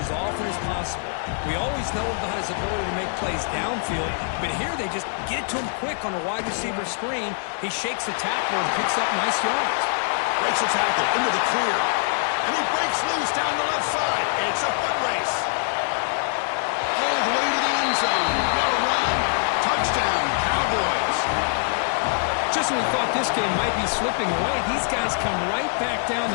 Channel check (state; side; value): silent; right; 63 dB below the other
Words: often as possible. We always know about his ability to make plays downfield, but here they just get it to him quick on a wide receiver screen. He shakes the tackler and picks up nice yards. Breaks a tackle into the clear. And he breaks loose down the left side. It's a foot race. All the way to the end zone. What a run. Touchdown, Cowboys. Just when we thought this game might be slipping away, these guys come right back down